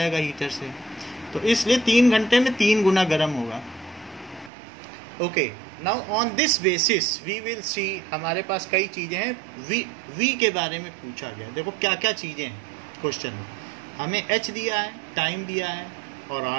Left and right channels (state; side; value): drops out; left; at 4.5 s